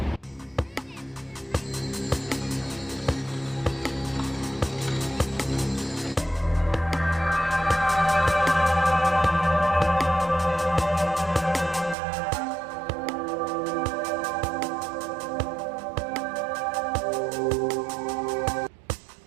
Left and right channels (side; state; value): left; drops out; at 12.0 s